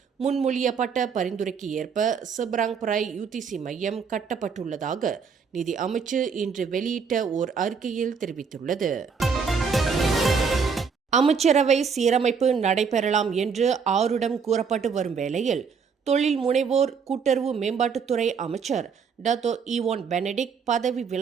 முன்மொழியப்பட்ட பரிந்துரைக்கு ஏற்ப செப்ராங்பராய் UTC மையம் கட்டப்பட்டுள்ளதாக நிதி அமைச்சு இன்று வெளியிட்ட ஓர் அறிக்கையில் தெரிவித்துள்ளது. அமைச்சரவை சீரமைப்பு நடைபெறலாம் என்று ஆருடம் கூறப்பட்டு வரும் வேளையில் தொழில் முனைவோர் கூட்டுறவு மேம்பாட்டுத்துறை அமைச்சர் டத்தோ ஈவான் பெனடிக்ட் பதவி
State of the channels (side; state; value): left; quieter; 6.0 dB